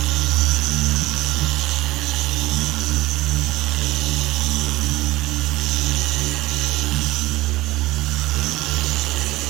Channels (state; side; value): quieter; left; 18.5 dB